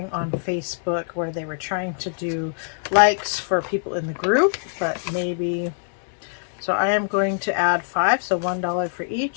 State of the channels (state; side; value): silent; right; digital silence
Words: on Facebook where they were trying to do likes for people in the group, but maybe, so I am going to add 5, so $1 for